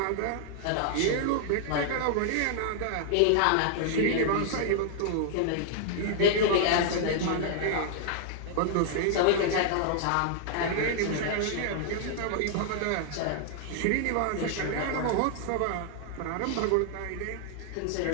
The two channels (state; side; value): different; both; correlation -0.01